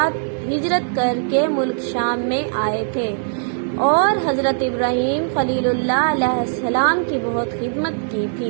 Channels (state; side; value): silent; left; digital silence